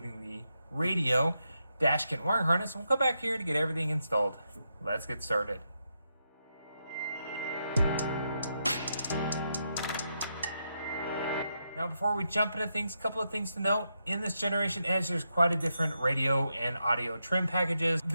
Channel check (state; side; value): inverted; both; correlation -0.83